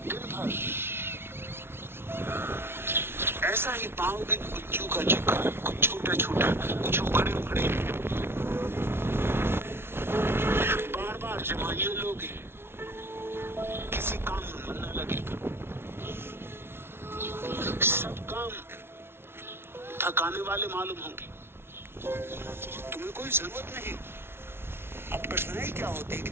दिन भर ऐसा ही पाओगे कुछ चूका चूका, कुछ छोटा छोटा, कुछ उखड़े उखड़े। बार बार जमाइए लोगे, किसी काम में मन न लगेगा, सब काम थकाने वाले मालूम होंगे। तुम्हें कोई जरूरत नहीं। अब कठिनाई क्या होती है कि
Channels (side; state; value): left; late; 0.12 ms